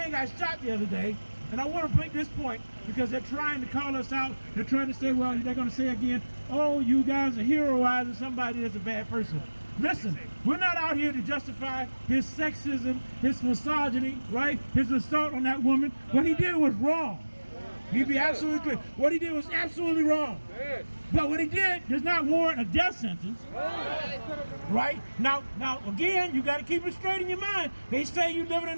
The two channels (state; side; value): inverted; both; correlation -1.00